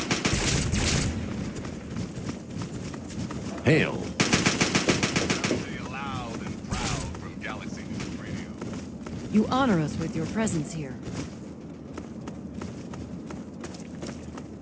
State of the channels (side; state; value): both; identical; correlation 1.00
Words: Hail. Loud and proud from Galaxy News Radio. You honor us with your presence here.